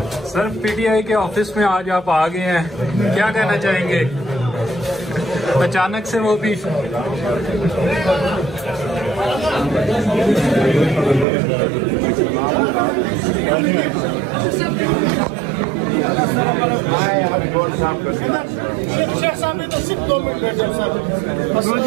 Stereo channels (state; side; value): drops out; left; at 11.2 s